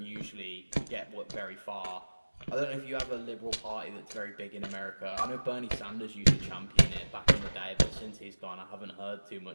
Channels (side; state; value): both; inverted; correlation -1.00